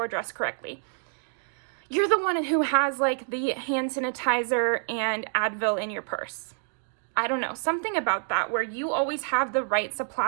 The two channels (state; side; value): silent; left; 60 dB below the other